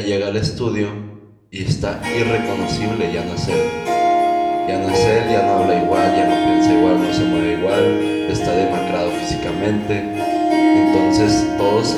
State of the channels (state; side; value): identical; both; correlation 1.00